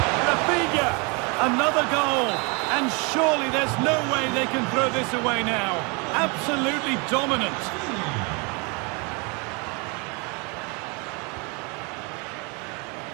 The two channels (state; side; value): quieter; left; 31.2 dB